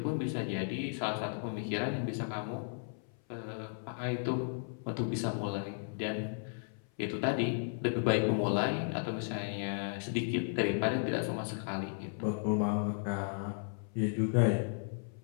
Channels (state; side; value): silent; right; 55 dB below the other